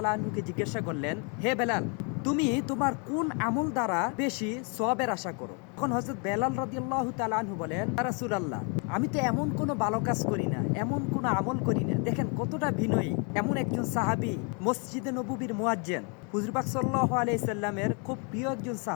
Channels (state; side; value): quieter; right; 36.3 dB